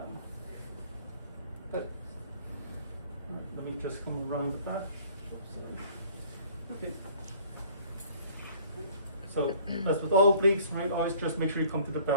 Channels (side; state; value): both; inverted; correlation -0.54